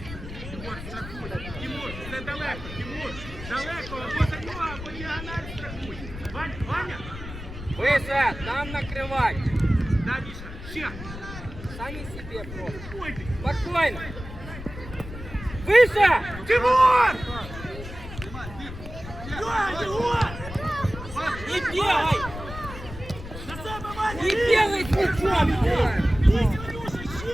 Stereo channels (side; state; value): left; noise; rumble, 11 dB below the sound